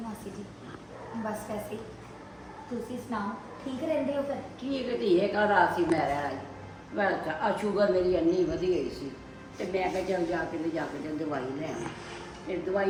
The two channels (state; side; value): identical; both; correlation 1.00